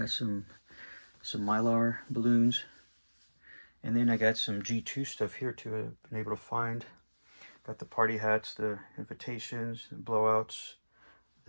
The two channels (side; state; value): both; inverted; correlation -1.00